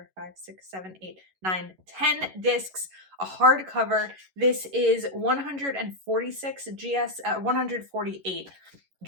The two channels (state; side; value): late; left; 11 ms